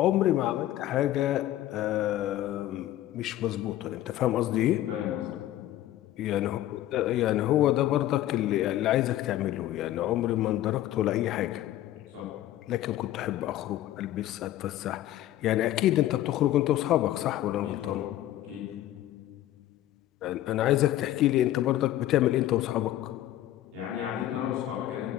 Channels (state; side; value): quieter; right; 13.7 dB